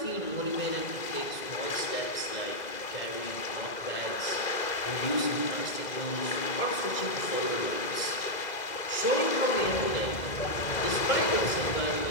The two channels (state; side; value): late; right; 2.0 ms